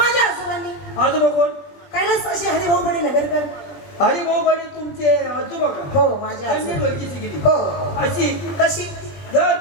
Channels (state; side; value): late; right; 20 ms